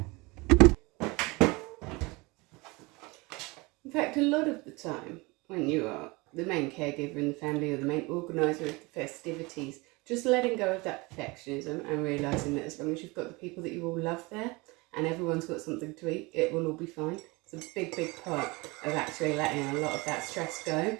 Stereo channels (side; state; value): left; quieter; 24.9 dB